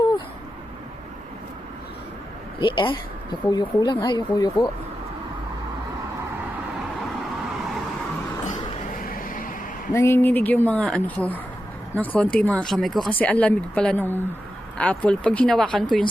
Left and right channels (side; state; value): both; normal; correlation 0.89